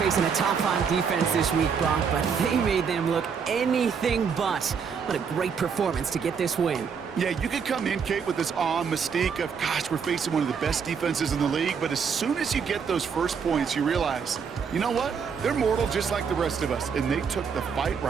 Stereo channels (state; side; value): quieter; left; 6.4 dB